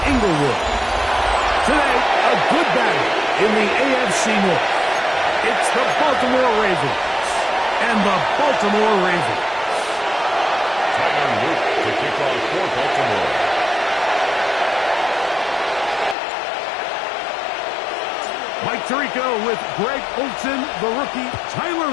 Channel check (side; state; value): right; drops out; at 16.2 s